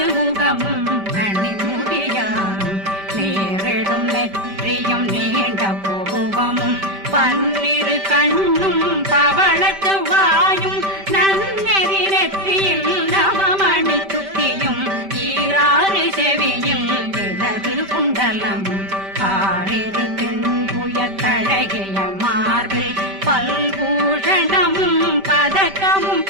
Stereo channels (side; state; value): left; late; 5.1 ms